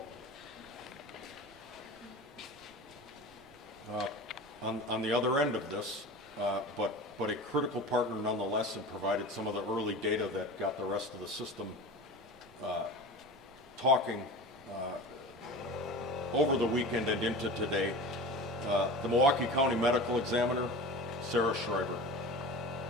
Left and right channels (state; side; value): normal; both; correlation 0.33